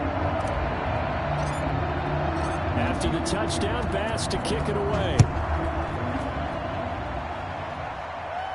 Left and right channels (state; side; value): identical; both; correlation 1.00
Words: After the touchdown, Bass to kick it away.